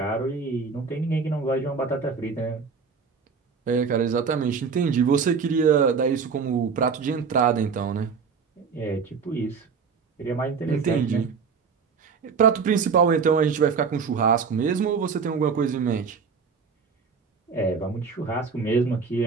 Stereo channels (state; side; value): quieter; left; 5.6 dB